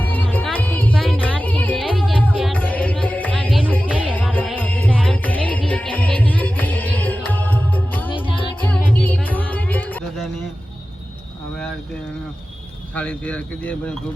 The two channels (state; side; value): normal; both; correlation 0.95